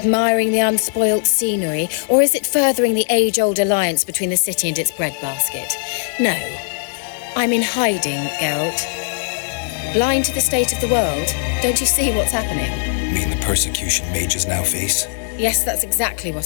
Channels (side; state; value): right; silent; digital silence